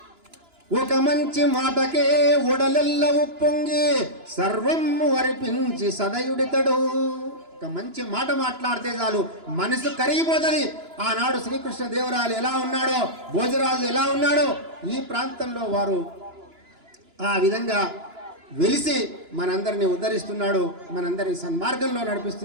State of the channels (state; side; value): late; left; 2.9 ms